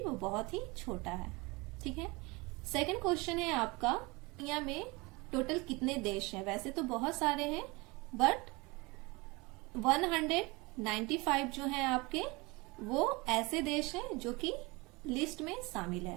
बहुत ही छोटा है। ठीक है, सेकंड क्वेश्चन है आपका, दुनिया में टोटल कितने देश हैं? वैसे तो बहुत सारे हैं, बट 195 जो हैं आपके, वो ऐसे देश हैं जो कि लिस्ट में शामिल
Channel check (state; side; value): quieter; left; 25.1 dB